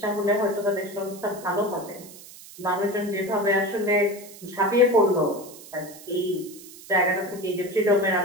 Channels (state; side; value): noise; right; hiss, 18 dB below the sound